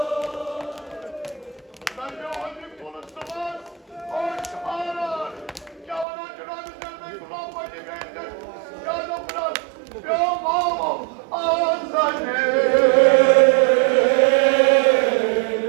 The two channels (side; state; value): left; drops out; at 6.1 s